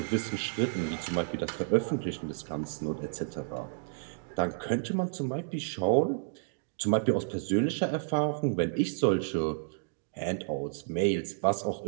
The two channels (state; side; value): silent; left; digital silence